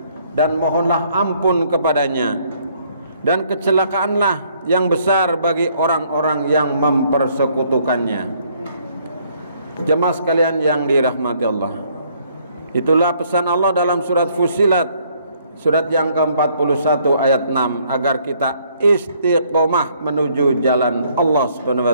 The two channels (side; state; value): both; inverted; correlation -0.65